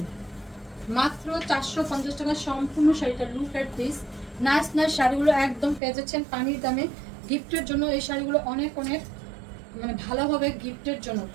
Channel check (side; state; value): left; drops out; at 5.8 s